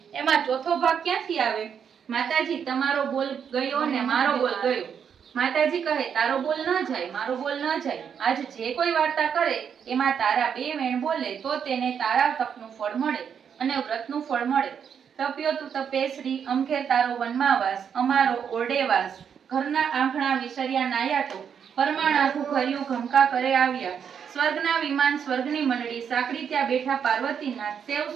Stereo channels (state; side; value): quieter; left; 7.6 dB